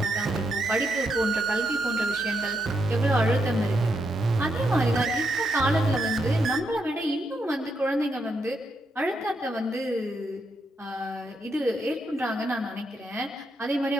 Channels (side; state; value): both; normal; correlation 0.81